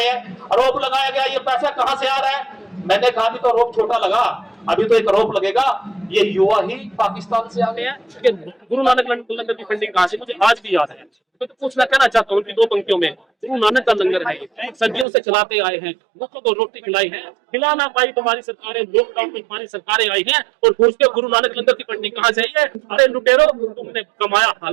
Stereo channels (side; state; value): left; drops out; at 15.1 s